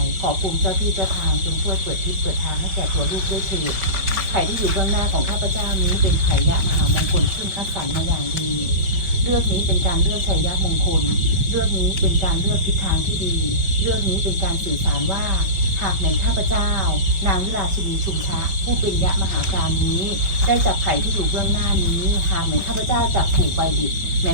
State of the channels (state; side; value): late; left; 5.2 ms